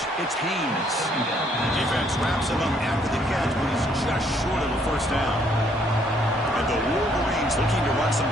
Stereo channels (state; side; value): normal; both; correlation 0.67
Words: it's Haynes. Defense wraps him up after the catch, but he's just short of a first down. And the Wolverines looking to run some